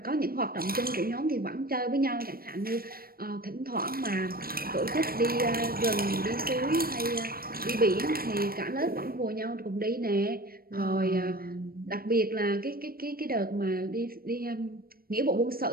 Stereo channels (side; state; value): left; late; 0.43 ms